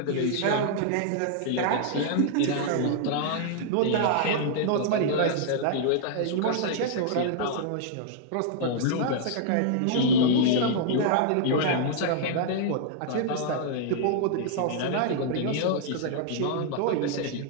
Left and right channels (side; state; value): both; different; correlation -0.01